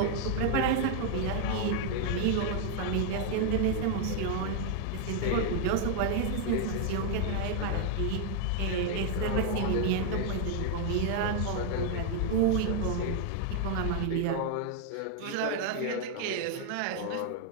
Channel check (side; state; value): both; different; correlation 0.00